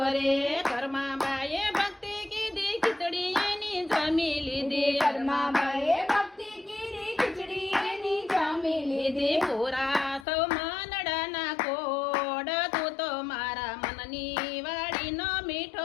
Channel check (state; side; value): drops out; right; at 10.2 s